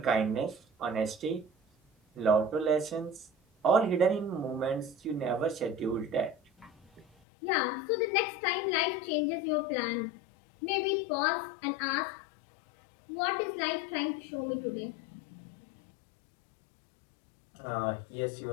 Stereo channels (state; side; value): drops out; right; at 7.1 s